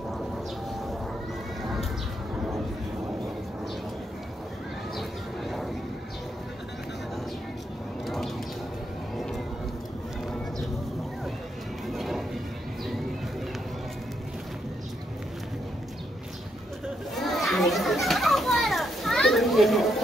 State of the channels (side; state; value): both; normal; correlation 0.78